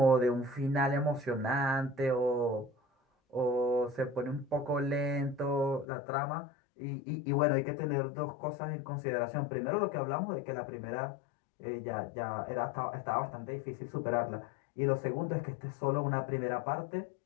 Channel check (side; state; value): right; drops out; at 5.9 s